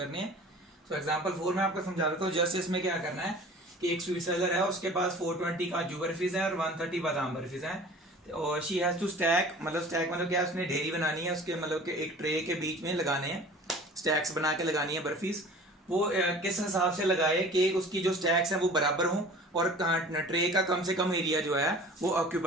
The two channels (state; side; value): normal; both; correlation 0.44